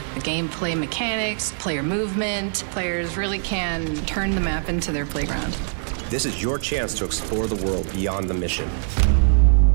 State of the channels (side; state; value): left; silent; digital silence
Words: the gameplay mechanics, player movement. Players really can turn the map into their playground. This is your chance to explore the world beyond the mission.